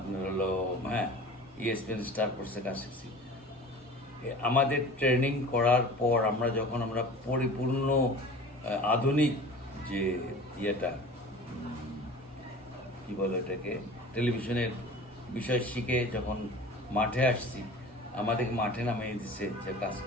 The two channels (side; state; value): both; normal; correlation 0.40